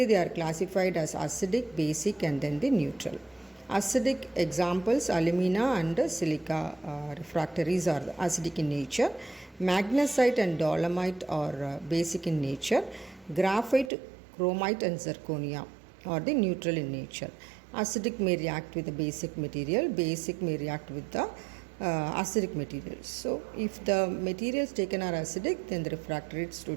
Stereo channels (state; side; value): drops out; left; at 13.9 s